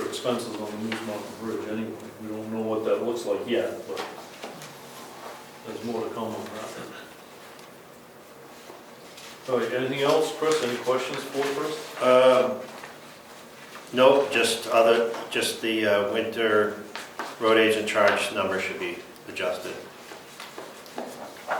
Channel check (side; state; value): both; identical; correlation 1.00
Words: expenses on the Moose Mountain Bridge anyway. We don't know what that looks like yet, but there's more to come on that. All right, anything else, Chris? Any questions for Chris? Nope, just the winter road agent charge number should be adjusted.